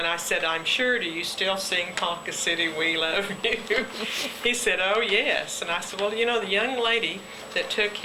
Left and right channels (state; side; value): identical; both; correlation 1.00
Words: I said, I'm sure, do you still sing Ponca City, We Love You? He said, oh, yes. And I said, well, you know, the young lady that took